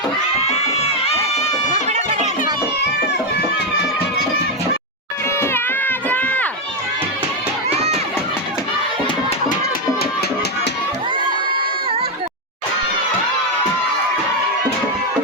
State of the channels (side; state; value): both; normal; correlation 0.04